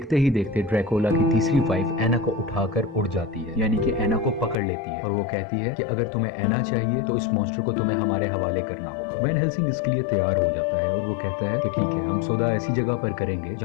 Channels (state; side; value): drops out; right; at 4.5 s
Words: ही देखते ड्रैकुला की तीसरी वाइफ एना को उठाकर उड़ जाती है, यानी कि एना को पकड़ लेती है और वो कहती है कि अगर तुम्हें एना चाहिए तो इस मॉन्स्टर को तुम्हें हमारे हवाले करना होगा। वैन हेल्सिंग इसके लिए तैयार हो जाता है और वो कहता है कि ठीक है, हम सौदा ऐसी जगह पर करेंगे